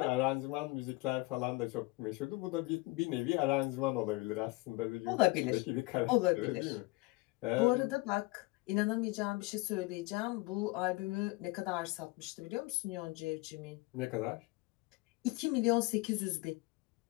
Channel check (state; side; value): quieter; right; 23.0 dB